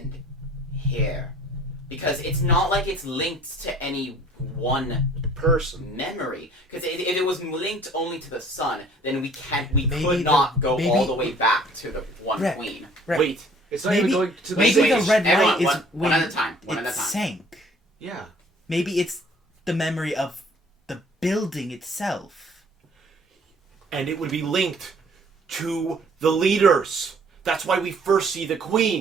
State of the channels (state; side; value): normal; both; correlation 0.55